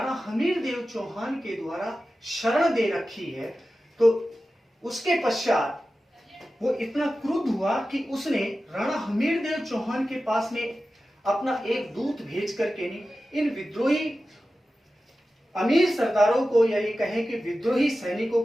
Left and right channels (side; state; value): both; normal; correlation 0.94